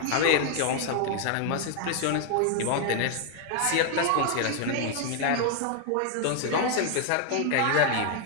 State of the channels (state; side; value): different; both; correlation 0.00